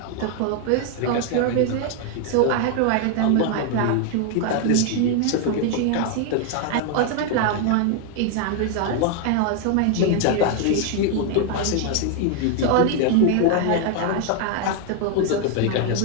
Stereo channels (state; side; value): different; both; correlation 0.01